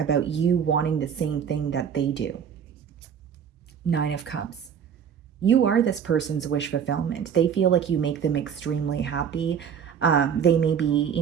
you wanting the same thing that they do. Nine of Cups. You are this person's wish fulfillment. They feel like you make them extremely happy. They may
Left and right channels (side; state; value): left; quieter; 7.8 dB